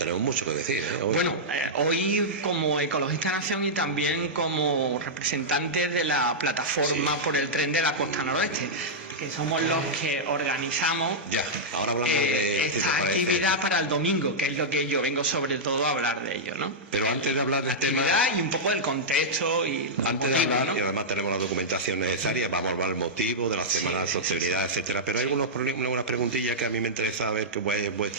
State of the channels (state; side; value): normal; both; correlation -0.08